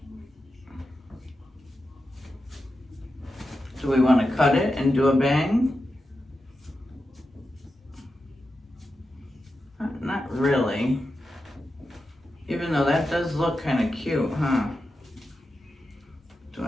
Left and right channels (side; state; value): both; normal; correlation 0.90